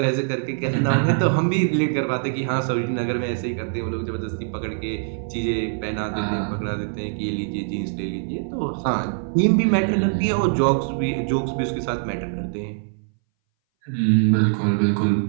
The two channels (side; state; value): left; silent; 61 dB below the other